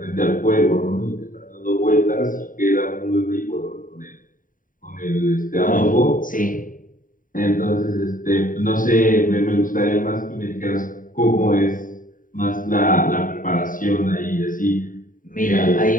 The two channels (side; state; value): right; late; 0.39 ms